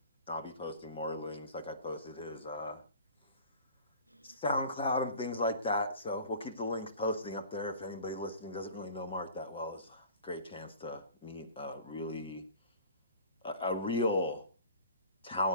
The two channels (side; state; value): both; inverted; correlation -0.42